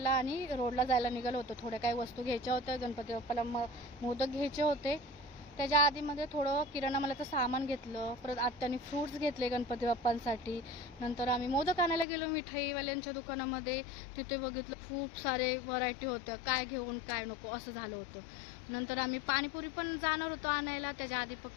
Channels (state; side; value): drops out; right; at 12.1 s